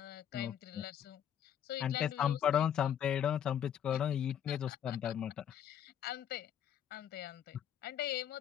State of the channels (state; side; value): quieter; right; 9.6 dB